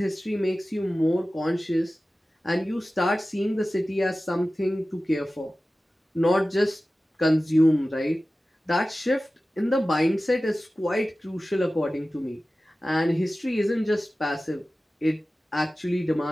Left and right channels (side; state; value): both; normal; correlation 0.96